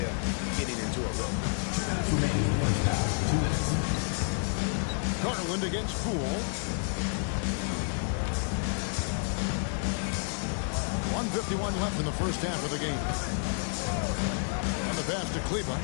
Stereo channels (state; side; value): silent; right; 55 dB below the other